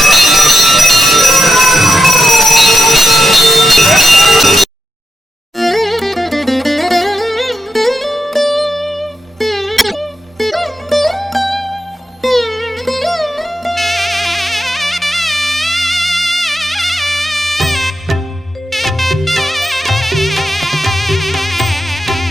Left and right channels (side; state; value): both; normal; correlation 0.87